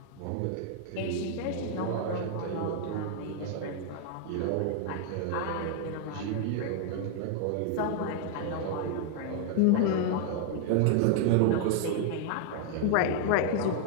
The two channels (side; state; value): both; different; correlation 0.00